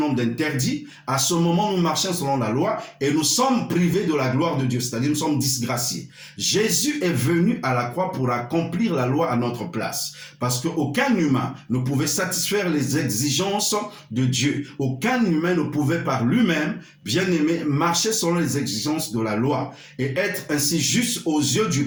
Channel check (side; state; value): both; identical; correlation 1.00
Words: d'interdits, à ce moment nous marchons selon la loi et nous sommes privés de la gloire de Dieu, c'est-à-dire nous sommes disgraciés. Jésus est venu à la croix pour accomplir la loi à notre place, parce qu'aucun humain ne pouvait satisfaire les exigences de Dieu. Aucun humain ne pouvait par lui-même, bien aimé, marcher selon les exigences de la loi et être ainsi juste aux yeux